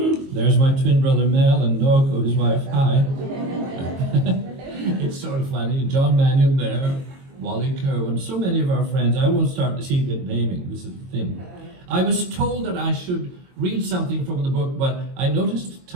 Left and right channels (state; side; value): late; left; 22 ms